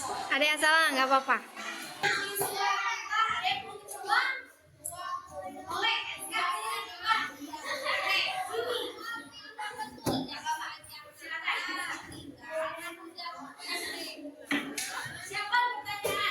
Ada yang salah nggak apa-apa. Siapa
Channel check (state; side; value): identical; both; correlation 1.00